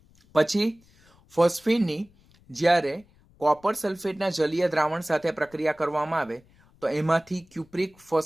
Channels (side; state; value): left; noise; rumble, 30 dB below the sound